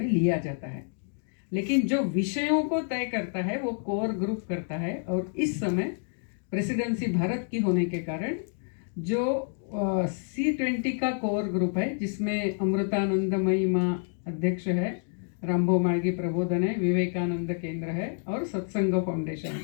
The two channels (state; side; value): silent; right; 59 dB below the other